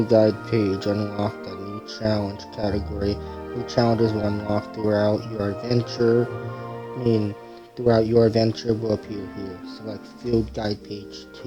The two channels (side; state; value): both; identical; correlation 1.00